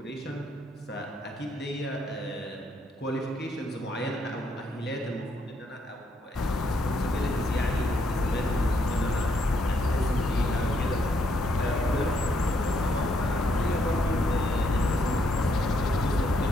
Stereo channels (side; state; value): both; normal; correlation 0.74